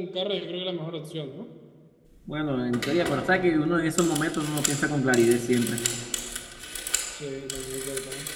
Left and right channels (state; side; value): identical; both; correlation 1.00